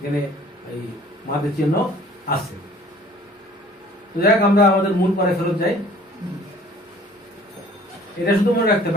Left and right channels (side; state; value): both; normal; correlation 0.52